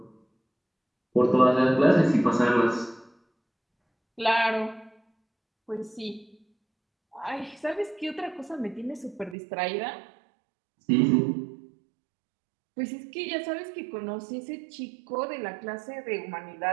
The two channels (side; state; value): left; drops out; at 9.3 s